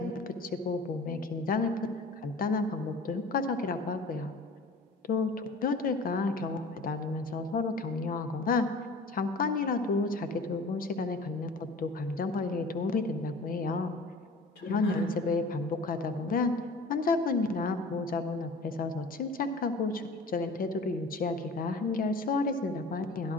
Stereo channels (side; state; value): right; quieter; 3.1 dB